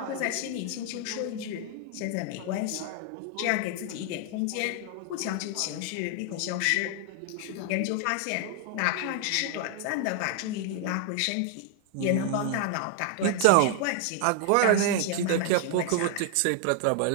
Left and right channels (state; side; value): different; both; correlation 0.00